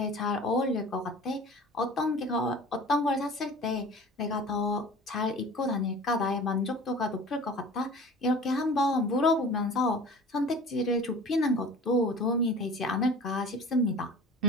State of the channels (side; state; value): both; normal; correlation 0.41